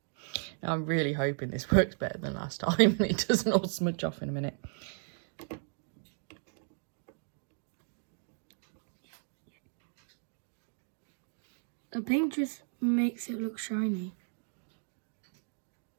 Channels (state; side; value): silent; left; 55 dB below the other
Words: I'm really hoping this works better than last time and it doesn't all smudge off in a minute. The pink just makes it look shiny.